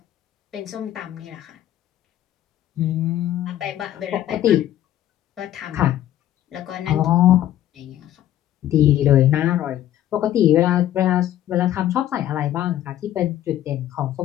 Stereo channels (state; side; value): quieter; right; 12.4 dB